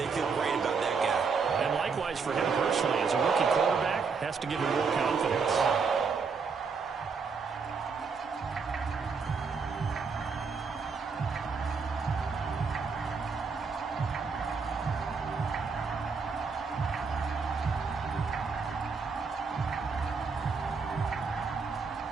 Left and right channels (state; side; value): quieter; left; 5.2 dB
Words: feel great about that guy. And likewise for him personally, as a rookie quarterback, has to give him more confidence.